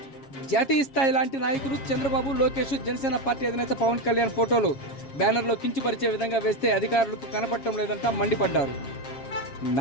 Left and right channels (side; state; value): right; late; 7.4 ms